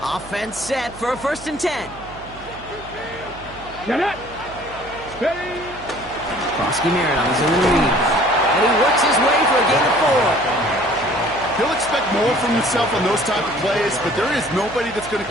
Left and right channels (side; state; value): right; noise; hum, 19 dB below the sound